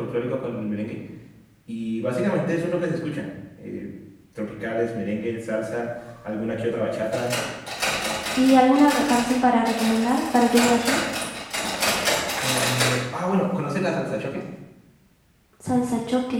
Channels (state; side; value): identical; both; correlation 1.00